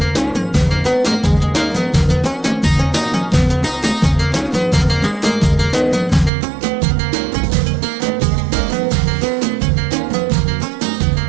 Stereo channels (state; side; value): drops out; left; at 6.3 s